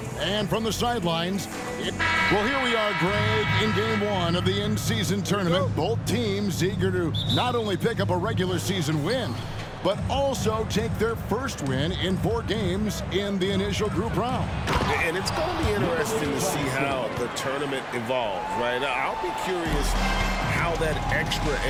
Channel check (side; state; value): both; identical; correlation 1.00